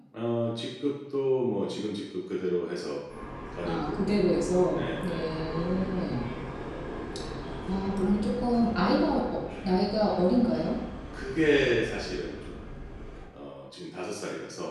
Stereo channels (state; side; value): identical; both; correlation 1.00